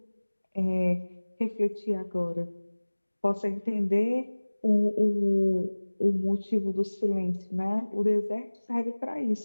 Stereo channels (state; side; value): inverted; both; correlation -1.00